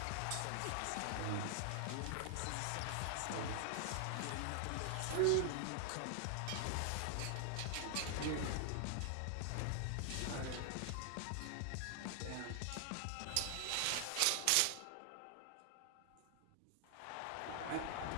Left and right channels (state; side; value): different; both; correlation 0.00